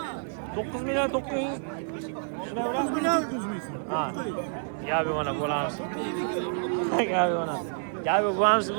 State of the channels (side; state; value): left; silent; 59 dB below the other